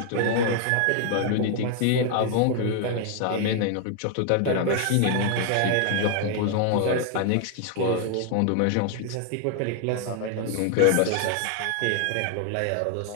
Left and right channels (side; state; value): both; different; correlation 0.00